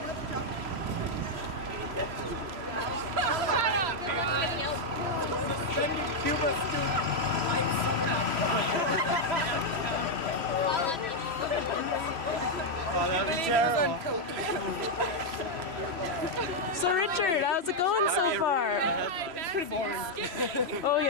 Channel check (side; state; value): left; late; 3.0 ms